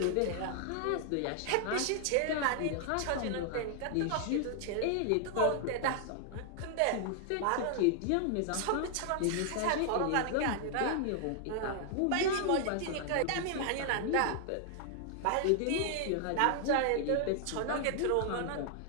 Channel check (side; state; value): both; different; correlation 0.00